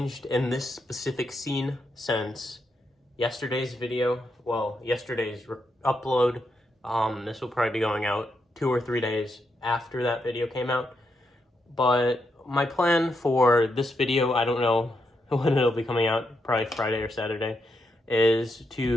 in this specific scene since yesterday's video. Well, yesterday's upload. This will probably be going out 2 or 3 days after that video came out. But my plan for this video, I don't know when it'll be coming out, probably Friday or Saturday, is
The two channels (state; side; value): normal; both; correlation 0.82